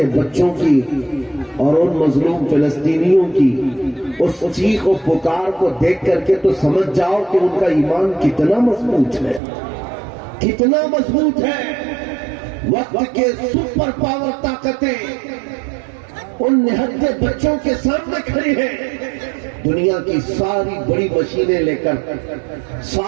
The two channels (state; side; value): drops out; left; at 9.4 s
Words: بچوں کی اور ان مظلوم فلسطینیوں کی اس چیخ و پکار کو دیکھ کر کے تو سمجھ جاؤ کہ ان کا ایمان کتنا مضبوط ہے، کتنا مضبوط ہے۔ وقت کے سپر پاور طاقتیں ان نہتے بچوں کے سامنے کھڑی ہیں۔ دنیا کی ساری بڑی مشینیں لے کر،